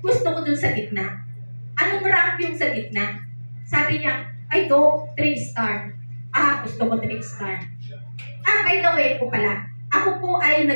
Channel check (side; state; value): both; inverted; correlation -1.00